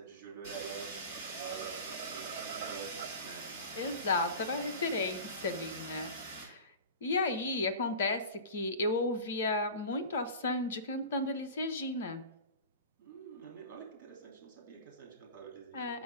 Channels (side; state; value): both; inverted; correlation -0.33